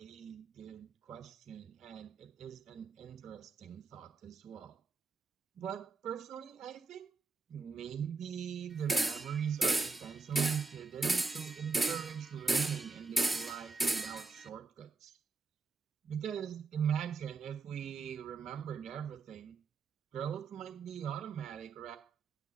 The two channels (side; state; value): left; quieter; 4.2 dB